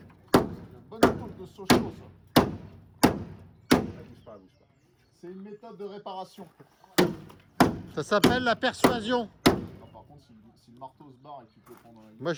Une bonne épaule de Sochaux ça. Bouge pas. C'est une méthode de réparation. Ça s'appelle la persuasion. Non, par contre, si le marteau se barre et que tu peux le prendre dans la gueule. Moi,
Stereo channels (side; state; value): both; identical; correlation 1.00